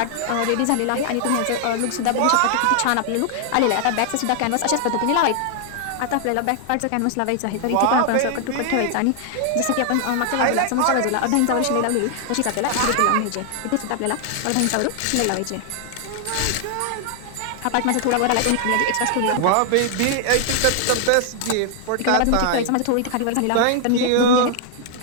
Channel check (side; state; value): both; different; correlation 0.00